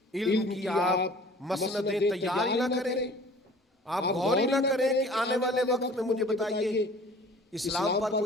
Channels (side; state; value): both; normal; correlation 0.48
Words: علم کی آپ مسندیں تیار ہی نہ کریں, آپ غور ہی نہ کریں کہ آنے والے وقت میں مجھے بتائیے اسلام پر